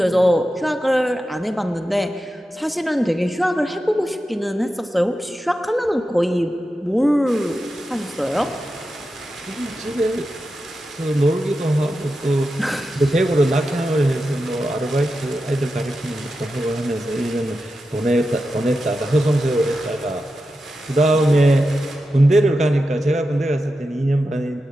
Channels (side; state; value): both; normal; correlation 0.90